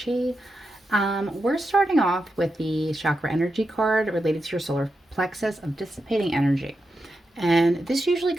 We're starting off with the chakra energy card related to your solar plexus of dissipating energy. And this usually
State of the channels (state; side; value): normal; both; correlation 0.88